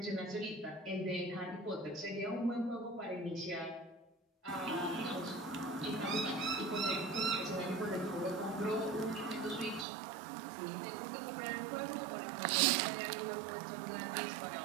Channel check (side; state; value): left; drops out; at 9.9 s